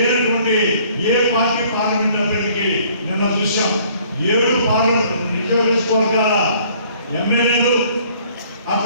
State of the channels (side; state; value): both; inverted; correlation -0.58